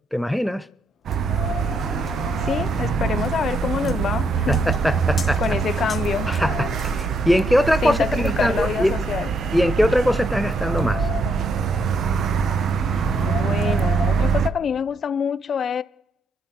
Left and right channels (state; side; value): normal; both; correlation 0.75